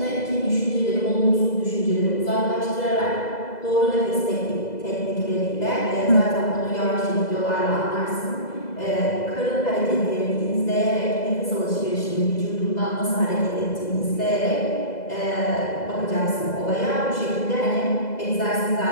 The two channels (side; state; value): right; late; 2.0 ms